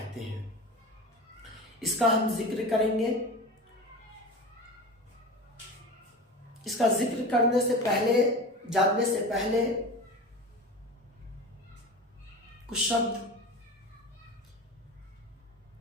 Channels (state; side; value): normal; both; correlation 0.31